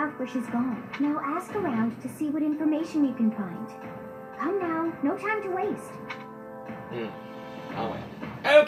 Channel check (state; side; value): identical; both; correlation 1.00